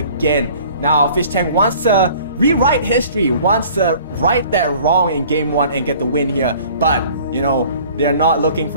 Now, Fish Tank wants to rewrite history, wants to right that wrong in game one and get the win here, but, you know, they're not looking for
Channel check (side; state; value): both; inverted; correlation -0.50